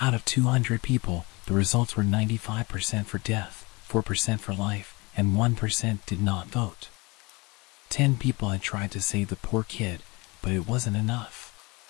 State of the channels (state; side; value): quieter; right; 25.4 dB